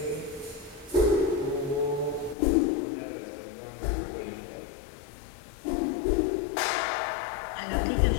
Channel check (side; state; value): right; drops out; at 2.4 s